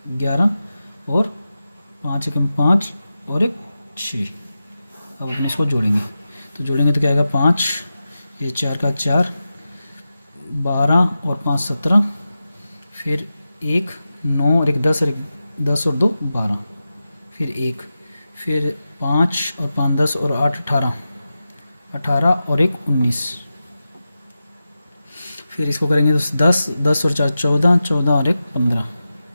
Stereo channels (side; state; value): both; inverted; correlation -0.92